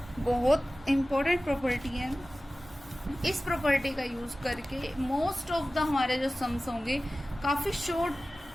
बहुत इंपॉर्टेंट प्रॉपर्टी है। इस प्रॉपर्टी का यूज करके मोस्ट ऑफ द हमारे जो सम्स होंगे काफी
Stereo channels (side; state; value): both; normal; correlation 0.96